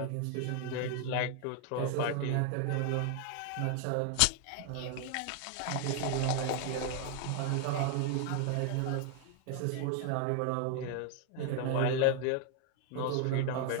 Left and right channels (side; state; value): both; different; correlation 0.00